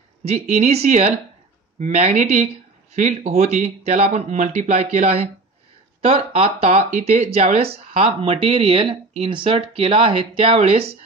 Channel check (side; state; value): left; quieter; 3.4 dB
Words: जी इनिशियल मॅग्नेटिक फील्ड होती त्याला आपण मल्टिप्लाय केला आहे. तर आता इथे ज्यावेळेस हा मटेरियल इन्सर्ट केला आहे त्यावेळेस